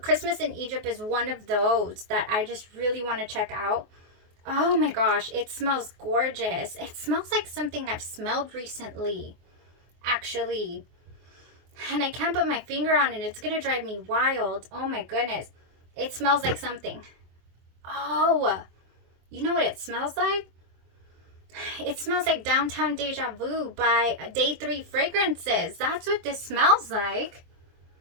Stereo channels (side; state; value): left; late; 24 ms